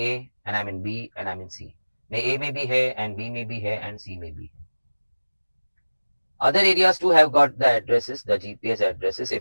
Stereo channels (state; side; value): inverted; both; correlation -1.00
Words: and I am in B and I am in C. A may be here and B may be here and C may be here. Other areas too have got the addresses, the GPS addresses.